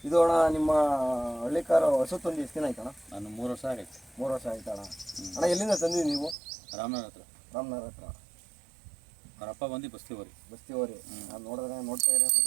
ಇದು ಅಣ್ಣ ನಿಮ್ಮ ಹಳ್ಳಿಕಾರ ಹಸು ತಂದು ಎಷ್ಟು ದಿನ ಆಯ್ತಣ್ಣ? ನಾನು 3 ವರ್ಷ ಆಗೈತೆ. 3 ವರ್ಷ ಆಯ್ತಾ ಅಣ್ಣ? ಅಣ್ಣ ಎಲ್ಲಿಂದ ತಂದಿವಿ ನೀವು? ರಾಮನಗರ ಹತ್ರ. ರಾಮನಗರ ಹತ್ರ. ಅವರಪ್ಪ ಬಂದು ಬಸ್ತಿವರಿ. ನಾನು ನೋಡ್ತಾ ಇರೋ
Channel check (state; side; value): drops out; left; at 6.4 s